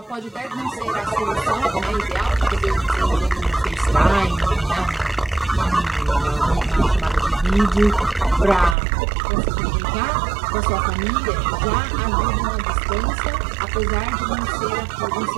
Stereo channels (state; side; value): drops out; left; at 8.8 s